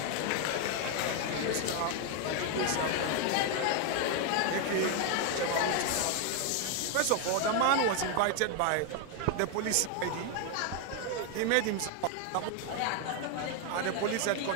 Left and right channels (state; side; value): different; both; correlation 0.01